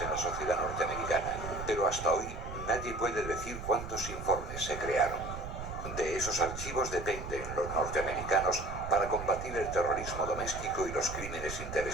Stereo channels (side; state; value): right; noise; rumble, 8 dB below the sound